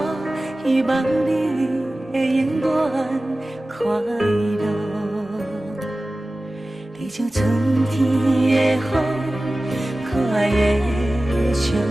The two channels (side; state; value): both; normal; correlation 0.96